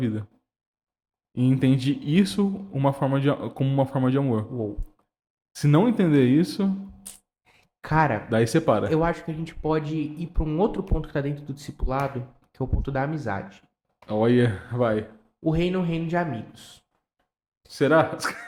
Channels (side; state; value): both; identical; correlation 1.00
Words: E entende isso como uma forma de amor. Uou. Se não entender isso, Cara, daí separa. eu acho que a gente pode ir para um outro ponto que está dentro do discipulado, que é o ponto da amizade. Olha, vai. O reino é um reino de amigos. Será?